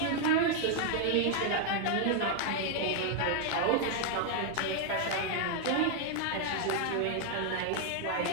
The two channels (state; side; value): different; both; correlation 0.00